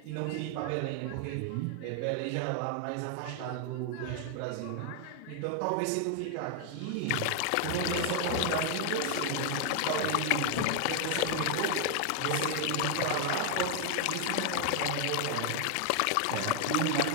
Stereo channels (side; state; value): both; different; correlation 0.00